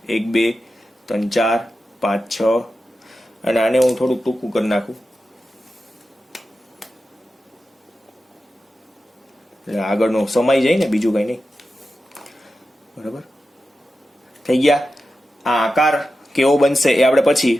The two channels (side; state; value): both; normal; correlation 0.91